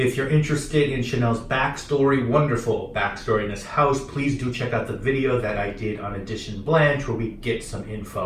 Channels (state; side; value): identical; both; correlation 1.00